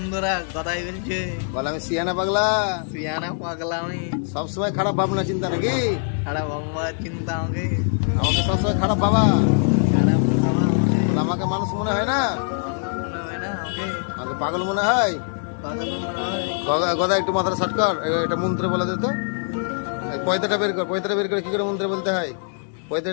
গদাই বলছে বল আমি সিয়ানা পাগলা। সিয়ানা পাগলা আমি? সবসময় খারাপ ভাবনা চিন্তা নাকি? খারাপ বাবা চিন্তা আমাকে সবসময় খারাপ ভাবা? খারাপ বাবা আমাকে মানুষ মনে হয় না, মনে হয় না আমাকে আমাকে পাগল মনে হয়। পাগল মনে হয়। গদা একটু মাথাটা শর্ট কর, একটা মন্ত্র বলে দে তো। পয়তাটা বের কর, পয়তাটা বের করে কি করে মন্ত্র বলতে হয়?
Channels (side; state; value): right; silent; 63 dB below the other